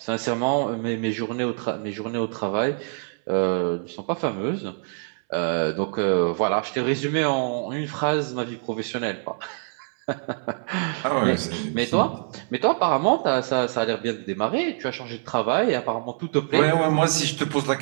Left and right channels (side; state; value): left; silent; 61 dB below the other